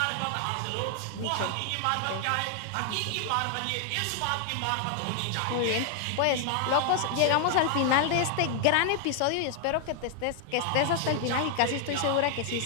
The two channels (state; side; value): different; both; correlation 0.00